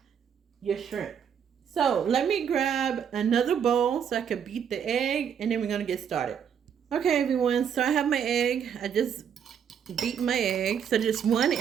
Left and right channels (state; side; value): quieter; left; 8.0 dB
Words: your shrimp. So let me grab another bowl so I can beat the egg, and then we're going to get started. Okay, everyone. So I have my egg. I just beat my egg. So just one